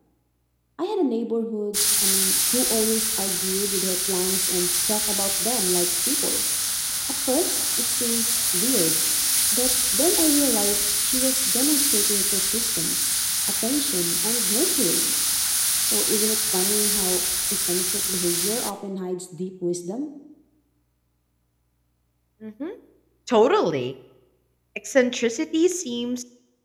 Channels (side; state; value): both; identical; correlation 1.00